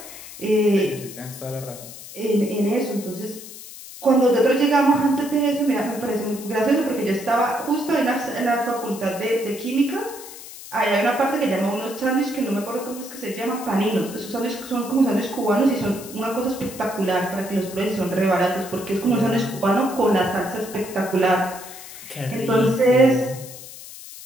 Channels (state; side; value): noise; left; hiss, 14 dB below the sound